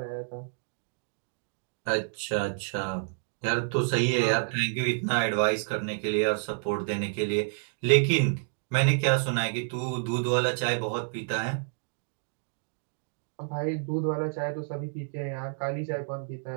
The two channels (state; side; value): silent; left; digital silence